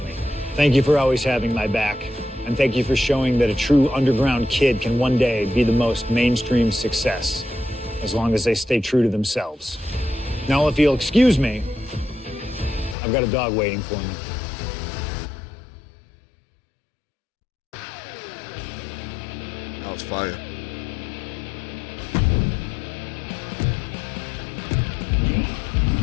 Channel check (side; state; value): right; drops out; at 13.0 s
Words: Thank you for always having my back. And thank you for showing that a true underground kid can one day be the most mainstream success, as long as they stay true to themselves. Now, if you'll excuse me, I've got a dog waiting for me. That was fire.